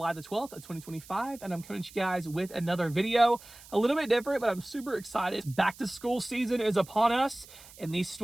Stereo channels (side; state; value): right; noise; hiss, 20 dB below the sound